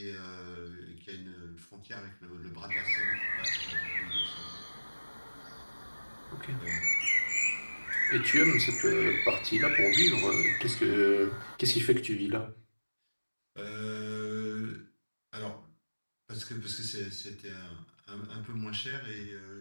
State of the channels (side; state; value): both; inverted; correlation -1.00